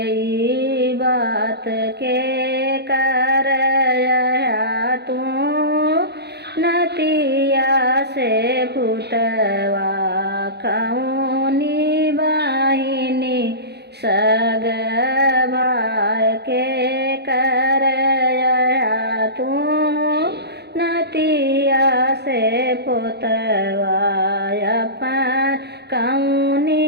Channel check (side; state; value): left; late; 0.48 ms